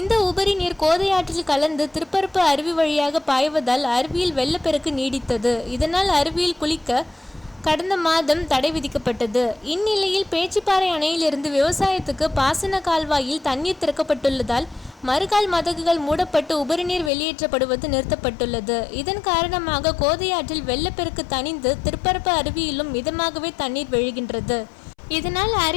உபரி நீர் கோதையாற்றில் கலந்து திருப்பரப்பு அருவி வழியாக பாய்வதால் அருவியில் வெள்ளப்பெருக்கு நீடித்தது. இதனால் அருவியில் குளிக்க கடந்த மாதம் தடை விதிக்கப்பட்டது. இந்நிலையில் பேச்சிப்பாறை அணையிலிருந்து விவசாயத்துக்கு பாசன கால்வாயில் தண்ணீர் திறக்கப்பட்டுள்ளதால் மறுகால் மதகுகள் மூடப்பட்டு உபரிநீர் வெளியேற்றப்படுவது நிறுத்தப்பட்டுள்ளது. இதன் காரணமாக கோதையாற்றில் வெள்ளப்பெருக்கு தணிந்து திருப்பரப்பு அருவியிலும் மிதமாகவே தண்ணீர் விழுகின்றது. இதனால்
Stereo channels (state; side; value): drops out; right; at 17.1 s